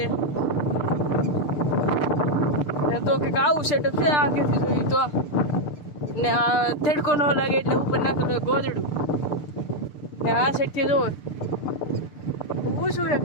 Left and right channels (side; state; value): right; late; 6.7 ms